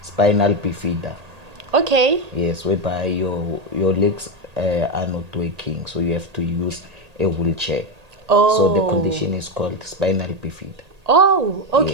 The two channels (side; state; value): left; late; 1.8 ms